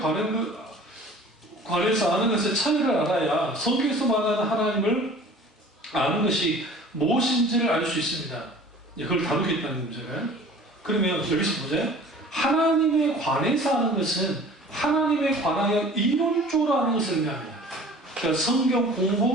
관해서 아는 것의 차이를 알아야 성경에서 말하는 하나님을 아는 것이 무엇인지를 알 수 있습니다. 그걸 다루겠다는 문제가요. 그러면 여기서 보세요. 하나님에 관해서 아는 것은 하나님에 관하여 이론적으로 아는 것을 의미합니다. 그러니까 성경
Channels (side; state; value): both; normal; correlation 0.46